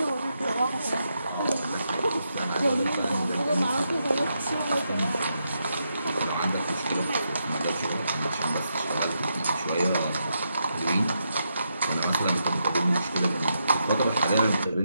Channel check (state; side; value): inverted; both; correlation -0.82